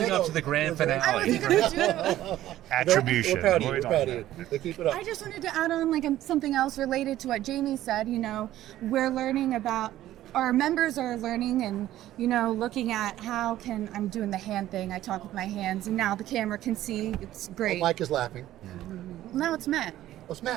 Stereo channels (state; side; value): quieter; left; 13.8 dB